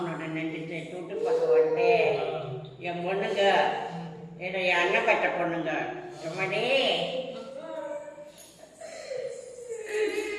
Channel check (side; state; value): both; identical; correlation 1.00